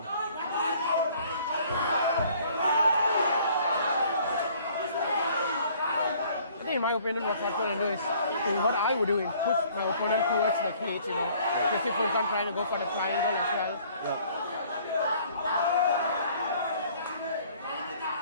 I think in my opinion what Fatko can do is, what I would do is push my opponent towards the cage, you know. Just if Furkan trying to go for the triangle as well. Yeah.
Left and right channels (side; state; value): both; inverted; correlation -0.57